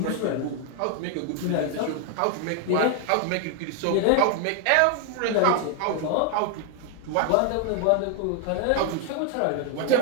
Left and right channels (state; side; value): different; both; correlation 0.00